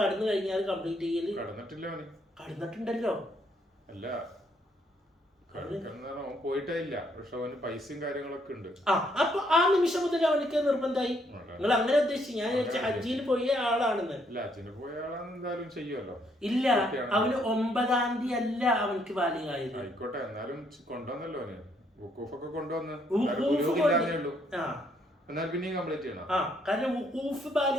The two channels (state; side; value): normal; both; correlation 0.70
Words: കഴിഞ്ഞാൽ കംപ്ലീറ്റ് ചെയ്യല് കടന്നിട്ടുണ്ടല്ലോ. അല്ല, പോയിട്ടില്ല, പക്ഷെ അവന് പൈസയും കാര്യങ്ങളൊക്കെ ഉണ്ട്. അപ്പൊ ആ നിമിഷം മുതൽ അവനക്ക് നിർബന്ധമായി. നിങ്ങൾ അങ്ങനെ ഉദ്ദേശിച്ചു, ഞാൻ ഹജ്ജിൽ പോയ ആളാണെന്ന്. എന്തായാലും ചെയ്യുമല്ലോ. ഇല്ല, അവന് 9-ാം തീയതി അല്ല അവനക്ക് ബാലിഗായത്. ആയിക്കോട്ടെ, എന്നാലും കൊണ്ടുവന്നല്ലോ അവന്, വഖൂഫൊക്കെ കൊണ്ടുവന്ന്, എന്നാൽ പിന്നെയും കംപ്ലീറ്റ് ചെയ്യണം. കാരണം വഖൂഫ്